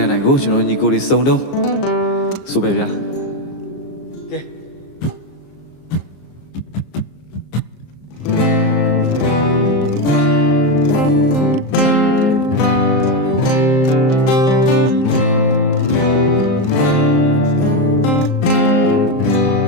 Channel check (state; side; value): late; right; 15 ms